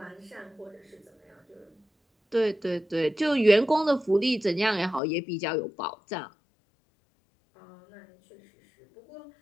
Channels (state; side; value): drops out; right; at 5.0 s